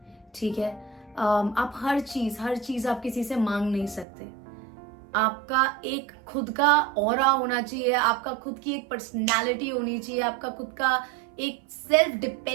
ठीक है, आप हर चीज आप किसी से मांग नहीं सकते। आपका एक खुद का ऑरा होना चाहिए, आपका खुद की एक पर्सनालिटी होनी चाहिए, आपका खुद का एक सेल्फ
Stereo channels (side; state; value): left; drops out; at 4.0 s